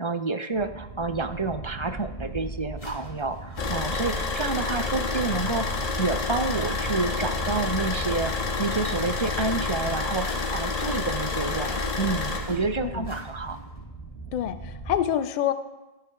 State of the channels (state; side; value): late; right; 2.0 ms